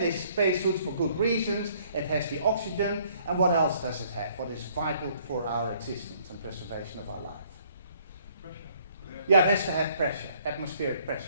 spacesuits for good reasons. It has the oxygen. And what else does it have? What is vital for our existence and preservation of our life? Yeah, it has to have pressure, atmospheric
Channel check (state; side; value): inverted; both; correlation -0.62